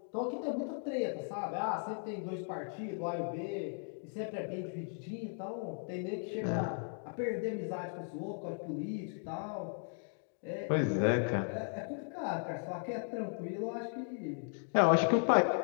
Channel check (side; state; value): right; silent; 53 dB below the other